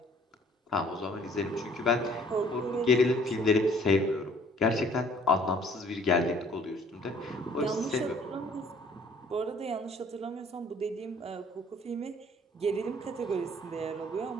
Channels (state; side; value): normal; both; correlation 0.57